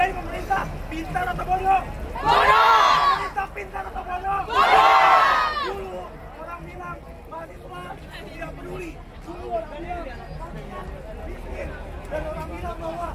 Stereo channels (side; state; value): both; identical; correlation 1.00